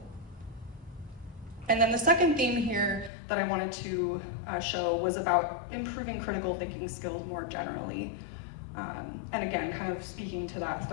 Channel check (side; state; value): right; drops out; at 3.1 s